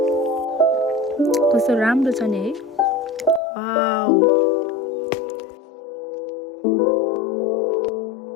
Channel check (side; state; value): right; drops out; at 3.4 s